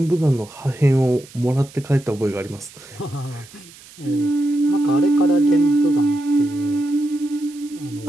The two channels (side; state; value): right; noise; hiss, 22 dB below the sound